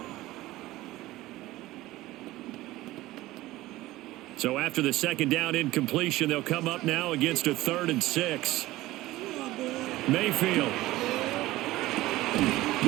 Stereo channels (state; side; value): quieter; left; 17.4 dB